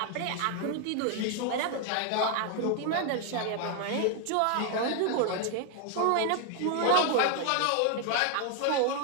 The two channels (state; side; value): different; both; correlation 0.00